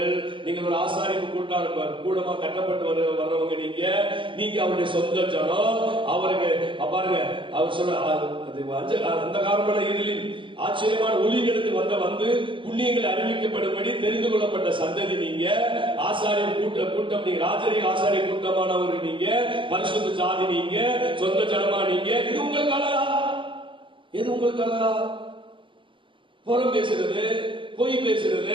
நீங்கள் ஒரு ஆசாரிப்பு கூடமா கட்டப்பட்டு வர்றவங்க, நீங்க அவருடைய சொந்த ஜனம். அவருக்கு பாருங்க, அவர் சொல்ற அந்த காரணமான இருளின் ஆச்சரியமான ஒளிகளுக்கு வந்து புண்ணியங்கள் அறிவிக்கப்படும்படி தெரிந்து கொள்ளப்பட்ட சந்ததி நீங்க. ஆசாரிய கூட்டம் நீங்க, ராஜரிக ஆசாரிய கூட்டமானவர்கள் நீங்க, பரிசுத்த சாதி நீங்க, சொந்த ஜனமா நீங்க. இது உங்களுக்கு அழகா? எது உங்களுக்கு அழகா? புறம் பேசுறது, பொய்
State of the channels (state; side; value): late; left; 0.24 ms